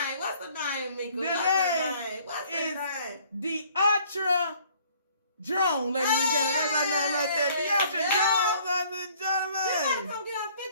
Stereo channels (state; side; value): inverted; both; correlation -0.58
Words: the name, Mika? What's the name? The Ultra Drone, ladies and gentlemen. That's our name right there. The Ultra Drone, ladies and gentlemen. You gotta come get on